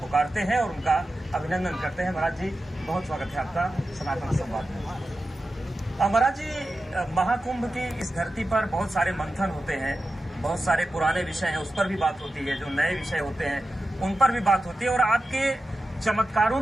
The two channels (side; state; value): both; normal; correlation 0.92